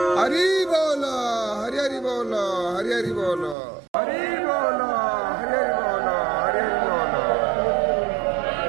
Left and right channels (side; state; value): left; drops out; at 3.6 s